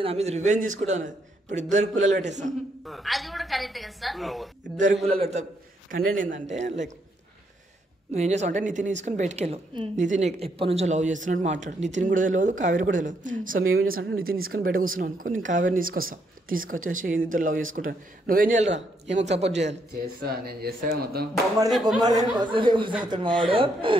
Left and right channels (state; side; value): normal; both; correlation 0.75